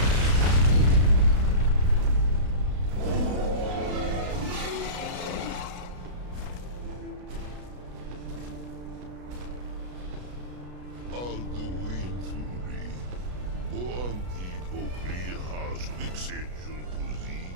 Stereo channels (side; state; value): left; late; 33 ms